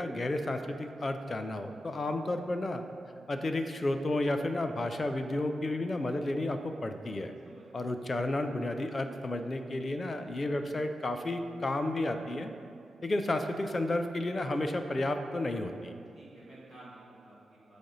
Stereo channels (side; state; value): both; normal; correlation 0.92